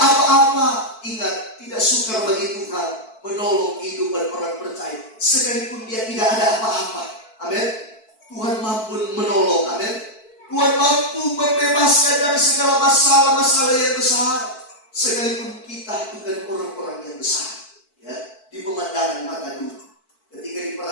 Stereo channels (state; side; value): late; right; 4.5 ms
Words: apa-apa. Ingat, tidak sukar bagi Tuhan menolong kehidupan orang percaya, sekalipun dia tidak ada apa-apa. Amin. Tuhan mampu menolong. Amin. Tuhan mampu membebaskan dari segala masalah-masalah yang besar, sekalipun kita bukan orang-orang yang besar. Ya, di pemandangan mata dunia, ketika